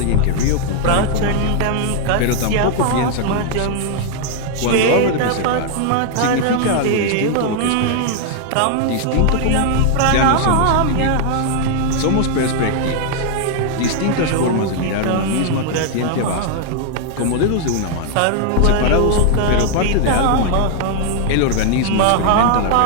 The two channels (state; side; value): different; both; correlation 0.00